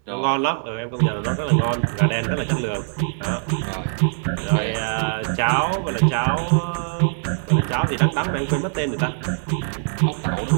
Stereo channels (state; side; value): silent; left; 64 dB below the other